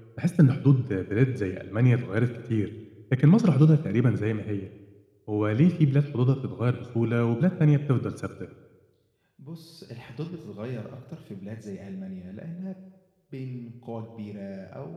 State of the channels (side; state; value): both; identical; correlation 1.00